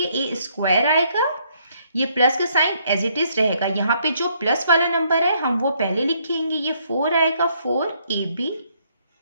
a² आएगा, ये प्लस का साइन एज इट इज रहेगा। यहाँ पे जो प्लस वाला नंबर है हम वो पहले लिखेंगे, ये 4 आएगा, 4ab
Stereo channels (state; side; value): inverted; both; correlation -0.69